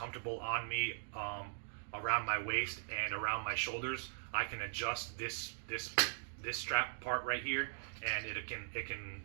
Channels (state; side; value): silent; left; digital silence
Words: on me, around my waist and around my shoulders, I can adjust this strap part right here, and it can